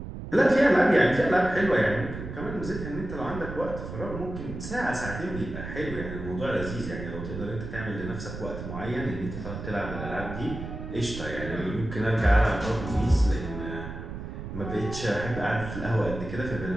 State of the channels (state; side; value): noise; right; rumble, 8 dB below the sound